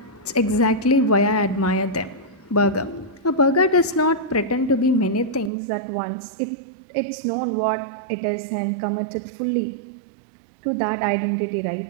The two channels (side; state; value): left; drops out; at 5.5 s